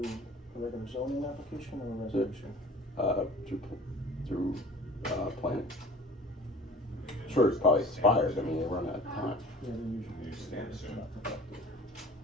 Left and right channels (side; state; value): both; normal; correlation 0.45